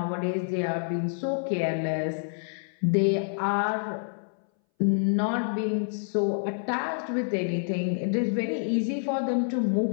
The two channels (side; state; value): right; silent; 60 dB below the other